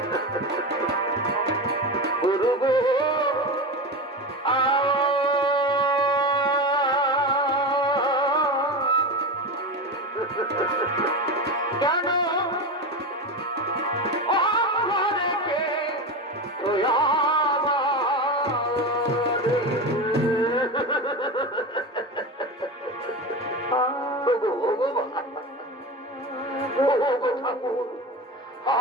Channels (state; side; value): normal; both; correlation 0.22